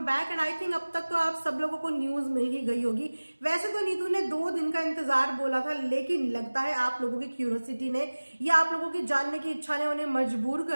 And I think अब तक तो आप सब लोगों को न्यूज मिल ही गई होगी। वैसे तो नीतू ने 2 दिन का इंतजार बोला था, लेकिन लगता है आप लोगों की क्यूरियोसिटी ने या आप लोगों की जानने की इच्छा ने उन्हें मजबूर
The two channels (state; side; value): inverted; both; correlation -1.00